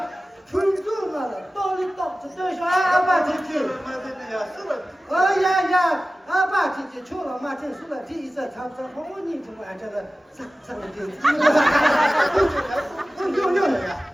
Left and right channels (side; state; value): both; normal; correlation 0.96